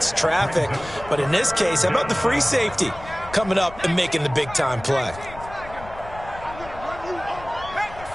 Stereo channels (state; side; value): noise; left; rumble, 16 dB below the sound